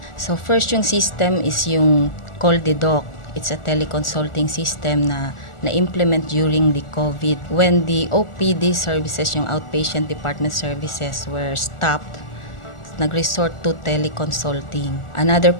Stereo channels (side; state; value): right; late; 1.4 ms